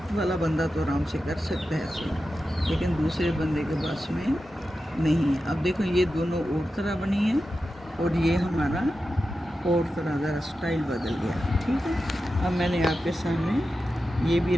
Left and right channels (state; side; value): normal; both; correlation 0.92